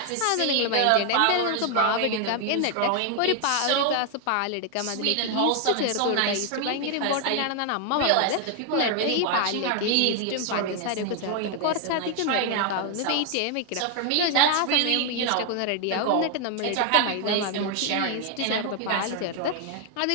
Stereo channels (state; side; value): different; both; correlation 0.00